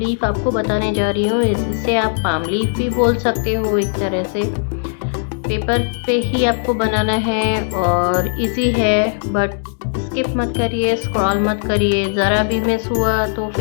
आपको बताने जा रही हूँ। इसे आप पाम लीफ भी बोल सकते हो एक तरह से। पेपर पे ही आपको बनाना है और इजी है, बट स्किप मत करिए, स्क्रॉल मत करिए। ज़रा भी मिस हुआ तो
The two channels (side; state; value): right; silent; digital silence